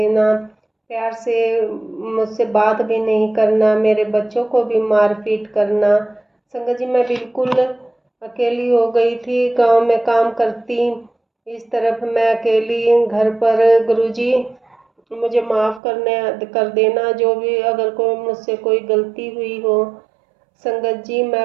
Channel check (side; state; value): left; drops out; at 15.8 s